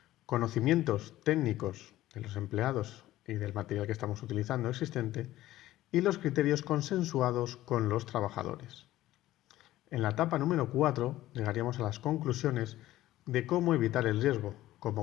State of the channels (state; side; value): quieter; right; 15.2 dB